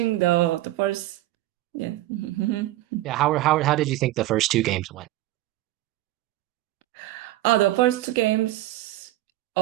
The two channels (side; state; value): left; quieter; 16.2 dB